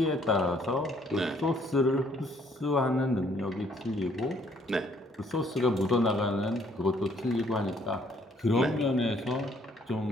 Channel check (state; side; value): normal; both; correlation 0.65